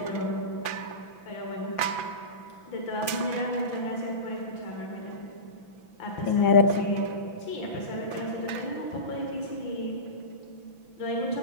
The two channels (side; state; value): right; late; 6.0 ms